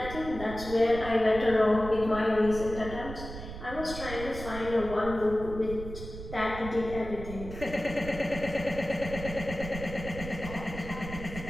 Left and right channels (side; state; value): right; noise; rumble, 10 dB below the sound